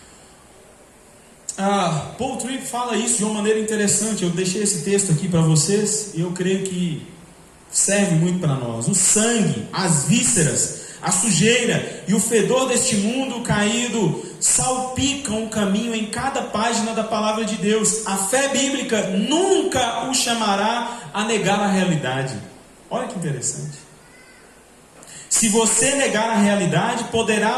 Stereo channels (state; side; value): identical; both; correlation 1.00